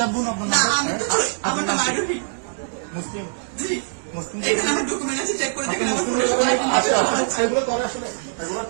বোন, আপনার না, আমি তো আমার নাম আরোহী। মুসলিম জি, এখানে আমার ডকুমেন্ট আছে, চেক করে দেখেন।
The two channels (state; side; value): silent; left; digital silence